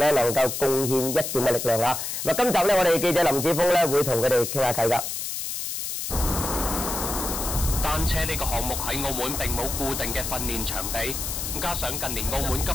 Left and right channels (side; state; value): left; noise; hiss, 4 dB below the sound